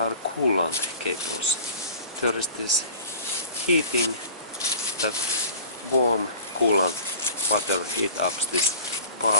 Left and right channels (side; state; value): both; inverted; correlation -0.42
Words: coolant cables. There is this heating, that warm coolant water heat up this